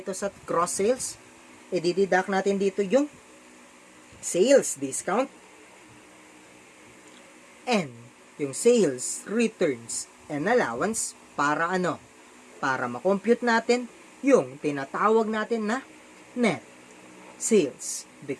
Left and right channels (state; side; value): identical; both; correlation 1.00